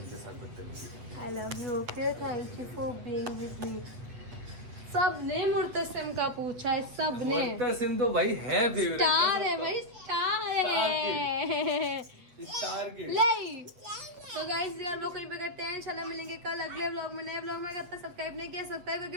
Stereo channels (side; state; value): left; late; 8.5 ms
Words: के साथ बदतमीजी करने I love you, okay? Thank you for being with me. सबने मुर्तसिम का पूछा है, का। सबने। मुर्तसिम तो भाई है फेवरेट, स्टार है भाई, स्टार है। स्टार के। ले तो गाइस यार लोग कहीं पे करते हैं, इंशाल्लाह मिलेंगे कल अगले व्लॉग में, नए व्लॉग में। करता सब्सक्राइब नहीं किया सब्सक्राइब करके